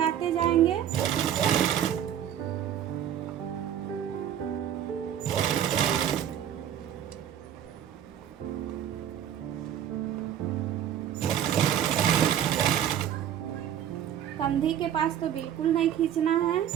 जाएंगे। कंधी के पास तो बिल्कुल नहीं खींचना है।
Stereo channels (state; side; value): quieter; left; 10.1 dB